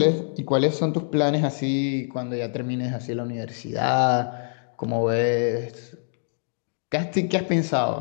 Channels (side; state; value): right; silent; digital silence